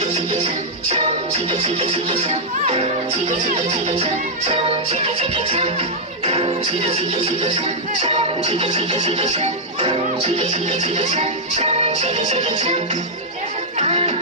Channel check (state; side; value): normal; both; correlation -0.07